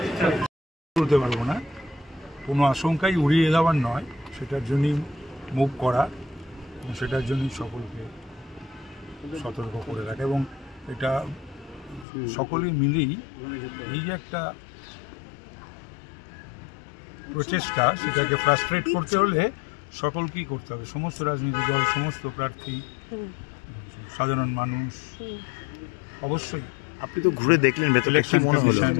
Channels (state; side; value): drops out; right; at 12.1 s